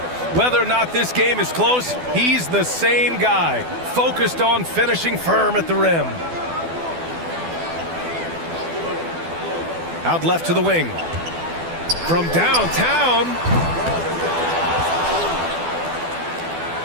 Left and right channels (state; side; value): late; left; 12 ms